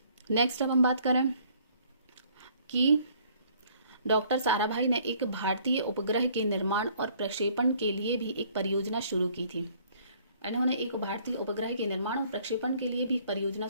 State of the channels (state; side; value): inverted; both; correlation -0.60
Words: नेक्स्ट अब हम बात करें कि डॉक्टर साराभाई ने एक भारतीय उपग्रह के निर्माण और प्रक्षेपण के लिए भी एक परियोजना शुरू की थी। इन्होंने एक भारतीय उपग्रह के निर्माण और प्रक्षेपण के लिए भी परियोजना